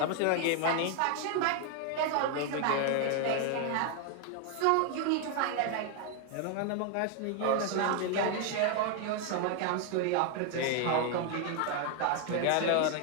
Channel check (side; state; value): both; different; correlation 0.01